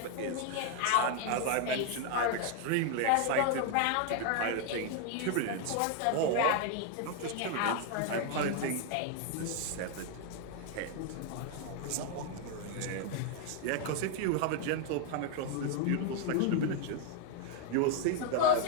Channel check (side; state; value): both; different; correlation 0.01